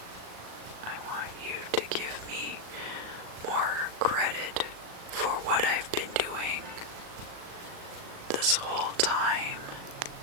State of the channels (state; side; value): late; left; 37 ms